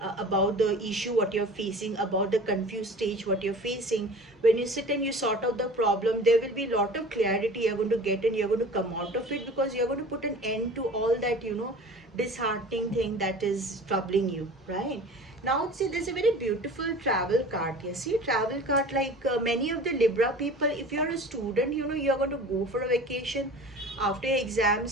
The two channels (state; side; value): normal; both; correlation 0.40